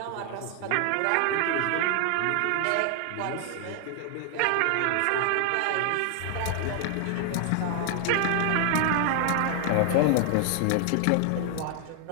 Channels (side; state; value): both; different; correlation 0.00